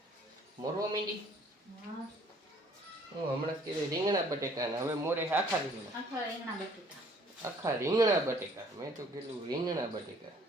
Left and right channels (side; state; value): both; normal; correlation 0.58